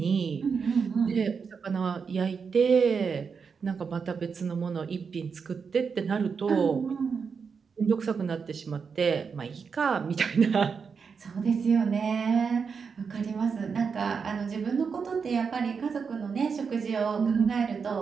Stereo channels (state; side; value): quieter; left; 5.8 dB